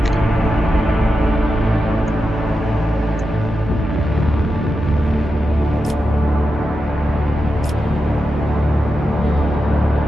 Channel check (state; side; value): normal; both; correlation 0.89